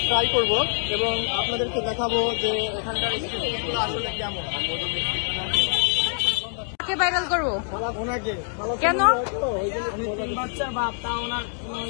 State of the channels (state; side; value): silent; right; 62 dB below the other